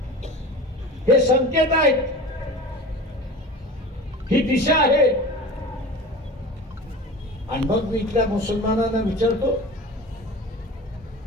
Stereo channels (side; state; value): both; normal; correlation 0.35